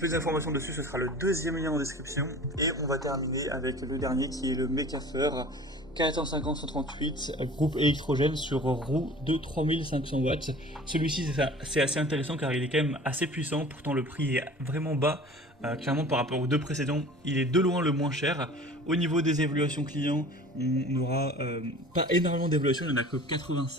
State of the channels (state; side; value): normal; both; correlation 0.43